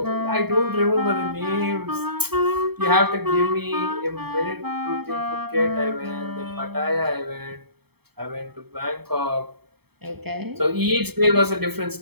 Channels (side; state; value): left; late; 0.97 ms